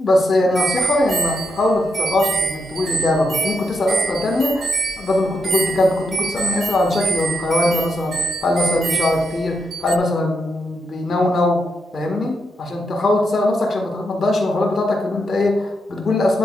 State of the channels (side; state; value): both; normal; correlation 0.83